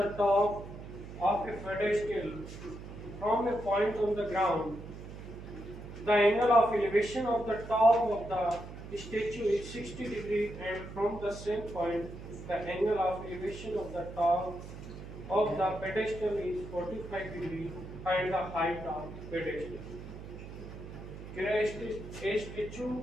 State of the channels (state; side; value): noise; right; hum, 12 dB below the sound